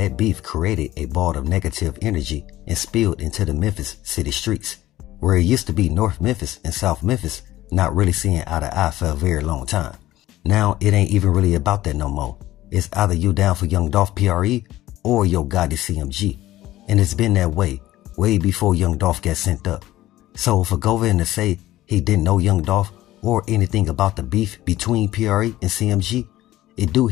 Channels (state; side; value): quieter; right; 15.4 dB